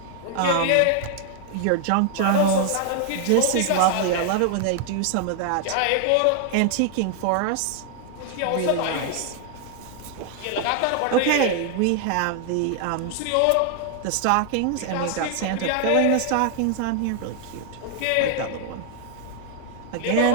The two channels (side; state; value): both; different; correlation 0.00